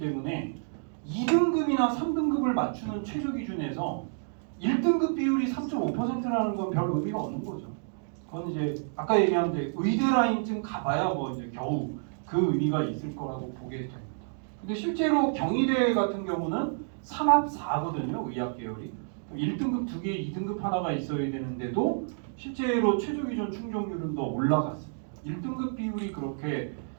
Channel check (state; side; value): silent; left; digital silence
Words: 2등급이나 3등급을 맞추는 최저 기준에서 1등급 비율이 3.5%라는 건 별 의미가 없는 거죠. 그건 이제 아까 얘기한 데 의대 라인쯤 가봐야 뭐 이제 겨우 그 의미가 있을 거라고 보게 됩니다. 근데 실제로 경희대 같은 경우는 3합 4거든요. 의학 계열이. 1등급 2개, 2등급 하나가 있어야 되는데도 실제로 최저 기준 충족률은 더 올라갔습니다. 1등급 비율이 그렇게